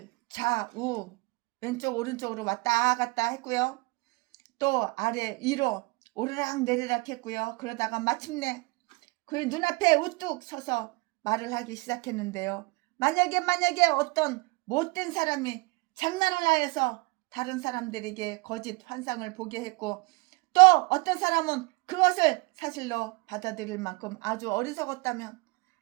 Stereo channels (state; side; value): quieter; left; 25.5 dB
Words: 좌우 왼쪽 오른쪽으로 왔다 갔다 했고요, 또 아래 위로 오르락 내리락 했고요. 그러다가 마침내 그의 눈앞에 우뚝 서서 말을 하기 시작했는데요. 만약에 어떤 못된 사람이 장난을 하여서 다른 사람들에게 거짓 환상을 보게 했고, 또 어떤 사람은 그것을 사실로 받아들일 만큼 아주 어리석었다면